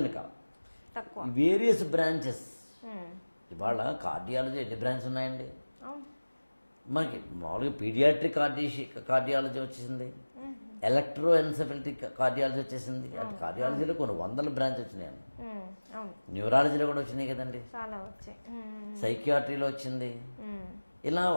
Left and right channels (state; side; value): inverted; both; correlation -1.00